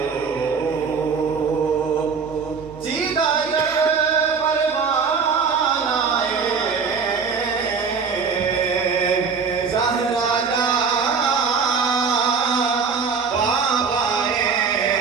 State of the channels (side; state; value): left; quieter; 5.5 dB